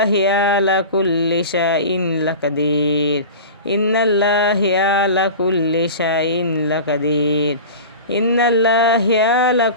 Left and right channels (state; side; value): inverted; both; correlation -0.33